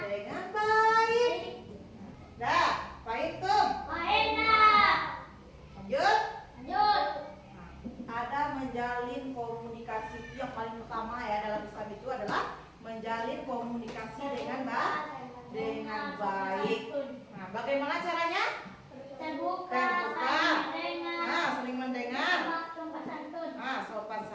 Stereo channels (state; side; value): identical; both; correlation 1.00